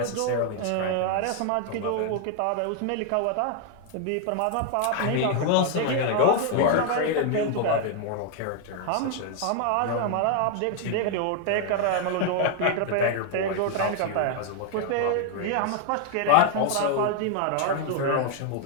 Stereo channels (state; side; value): different; both; correlation 0.00